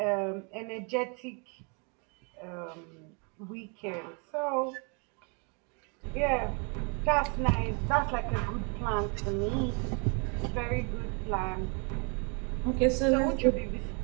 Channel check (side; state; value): left; quieter; 35.3 dB